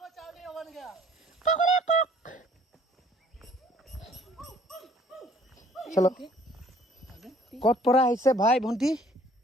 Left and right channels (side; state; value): both; normal; correlation 0.57